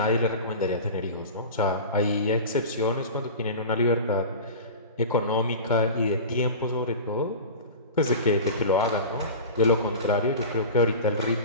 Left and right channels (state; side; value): inverted; both; correlation -0.32